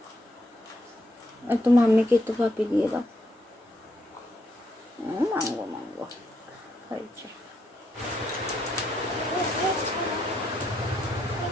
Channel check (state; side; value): normal; both; correlation 0.77